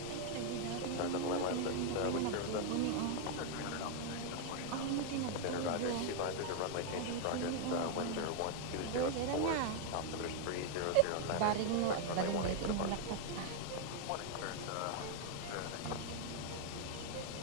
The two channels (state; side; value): different; both; correlation 0.00